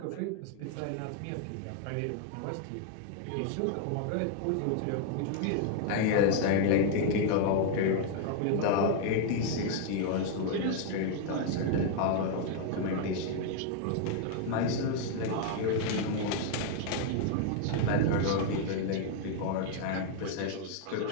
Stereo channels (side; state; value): both; different; correlation 0.00